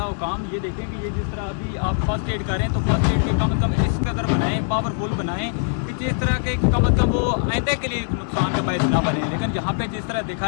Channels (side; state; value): right; silent; digital silence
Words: हुकाम ये देखें कि ये जिस तरह अभी आप फर्स्ट एड कर रहे हैं तो फर्स्ट एड के कम से कम इस कदर बनाएं, पावरफुल बनाएं कि जिस तरह के कम से कम वो आइंदा के लिए नुकसान का बायस ना बने। लेकिन यहाँ पे जिस तरह